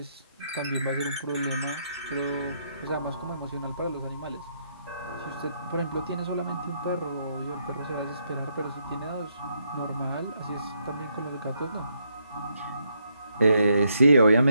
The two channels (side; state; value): both; inverted; correlation -0.76